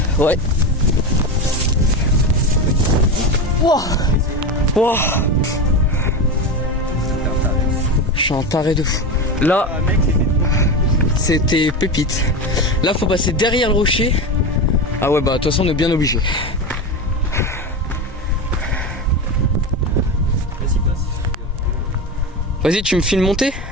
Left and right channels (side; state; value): both; normal; correlation 0.20